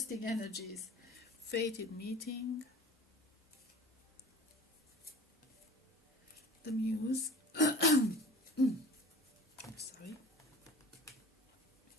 energies. Fated meeting. The Muse. I'm sorry.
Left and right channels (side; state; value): both; normal; correlation 0.42